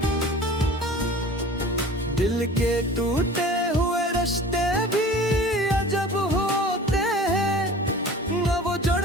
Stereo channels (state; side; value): normal; both; correlation 0.42